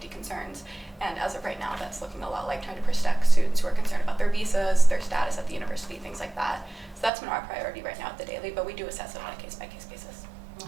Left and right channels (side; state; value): left; drops out; at 7.1 s